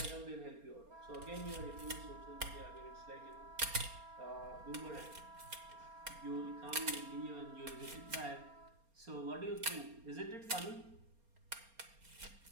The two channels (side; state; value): left; late; 4.3 ms